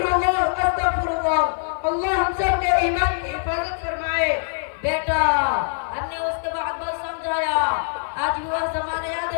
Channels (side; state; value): right; silent; 57 dB below the other